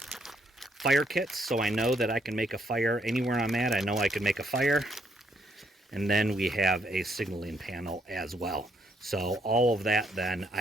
fire kit, so I know that I can make a fire anywhere I'm at. I know I can make a fire. And then we have a signaling panel as well. So all of that then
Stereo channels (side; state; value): both; normal; correlation 0.72